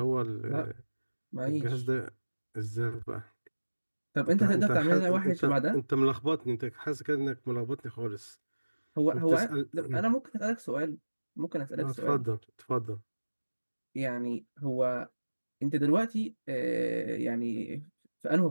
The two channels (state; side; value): inverted; both; correlation -1.00